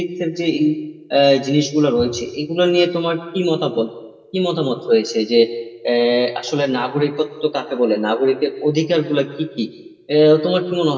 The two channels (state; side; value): identical; both; correlation 1.00